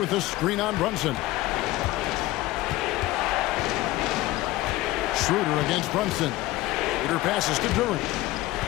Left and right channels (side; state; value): right; quieter; 17.5 dB